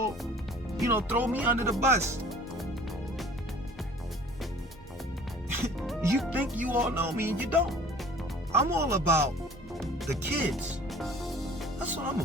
throw me under the bus. You think you all know me and you don't. I'm all about the kids. That's what I'm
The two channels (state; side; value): normal; both; correlation 0.48